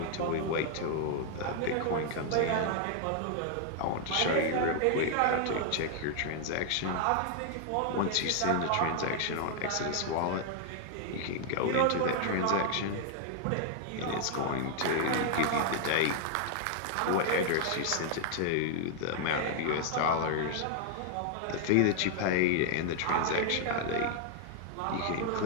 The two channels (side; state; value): both; different; correlation 0.00